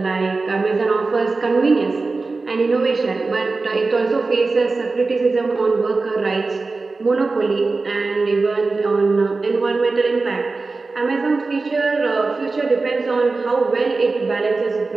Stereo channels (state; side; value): quieter; left; 3.8 dB